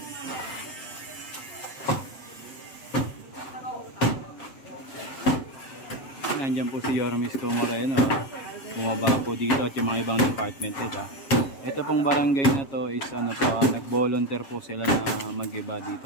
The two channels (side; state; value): right; late; 7.4 ms